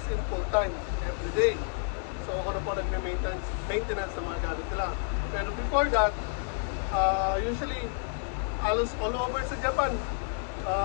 in full time, every day. So, ako na po nagme-maintenance ng mga gamit nila. Pero before that, usually, halos all over sa Japan,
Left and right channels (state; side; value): silent; right; 58 dB below the other